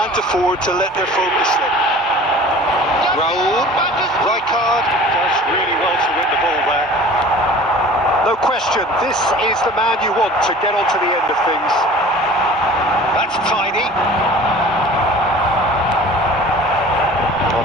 afford to let their focus slip. Raul, Rijkaard does really well to win the ball there. No question, this is the man you want to get onto the end of things. That's tidy. Well,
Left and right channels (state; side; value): normal; both; correlation 0.44